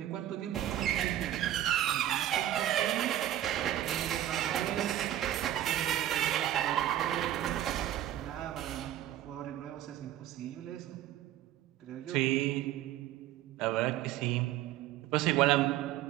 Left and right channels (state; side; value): quieter; left; 12.6 dB